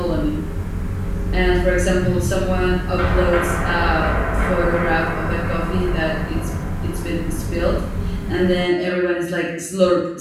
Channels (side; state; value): both; identical; correlation 1.00